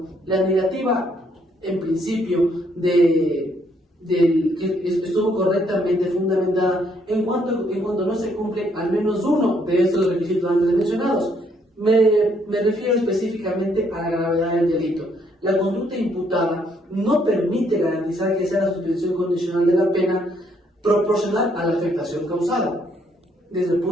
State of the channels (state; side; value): normal; both; correlation 0.70